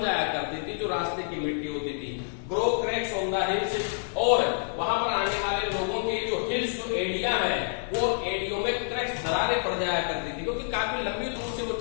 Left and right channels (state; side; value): silent; right; digital silence